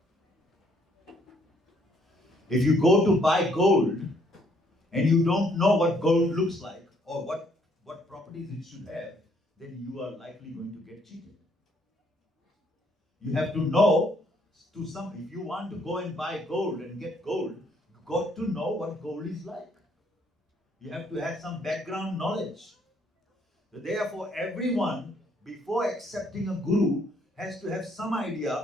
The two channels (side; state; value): both; normal; correlation 0.67